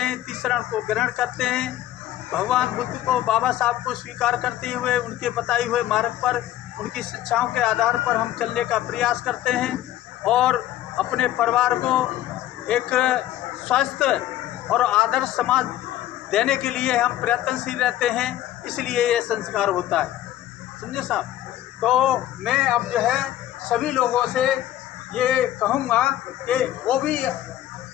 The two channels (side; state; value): right; quieter; 13.5 dB